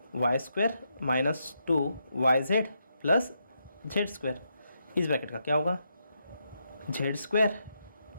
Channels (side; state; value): both; inverted; correlation -0.82